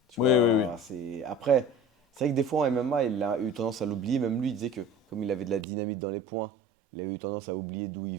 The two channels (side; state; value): left; drops out; at 5.7 s